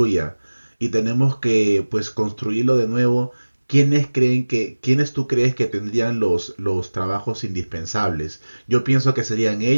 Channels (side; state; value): both; inverted; correlation -1.00